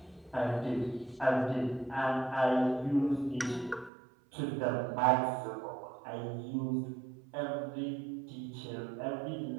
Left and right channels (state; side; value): drops out; left; at 3.9 s